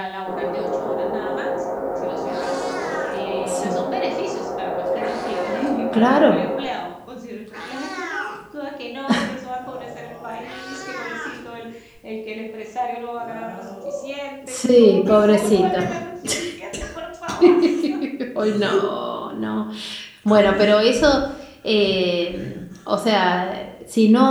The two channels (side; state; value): both; identical; correlation 1.00